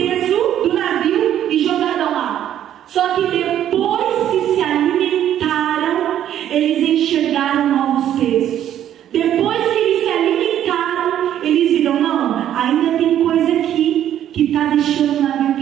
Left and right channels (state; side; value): quieter; left; 11.0 dB